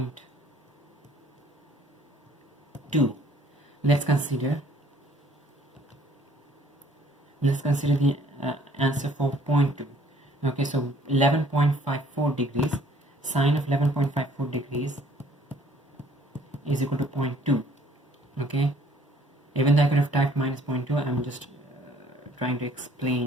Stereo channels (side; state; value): both; normal; correlation 0.59